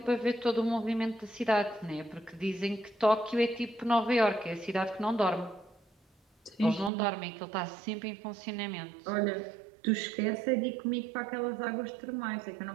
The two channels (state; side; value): drops out; left; at 6.9 s